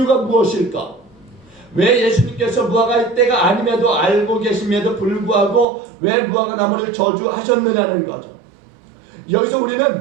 무엇일까? 왜 예수님께서 무화과의 때가 아님에도 알고 계심에도 불구하고 왜 무화과 나무를 저주하셨느냐는 거죠. 여기서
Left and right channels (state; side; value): drops out; left; at 5.7 s